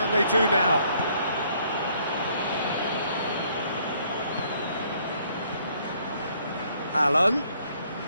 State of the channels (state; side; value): inverted; both; correlation -0.65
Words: they do now? Allen.